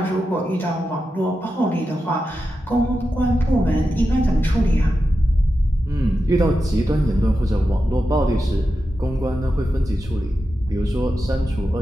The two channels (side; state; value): both; normal; correlation 0.90